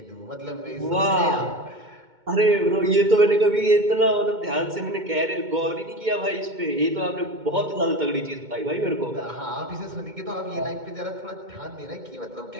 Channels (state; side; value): late; left; 2.2 ms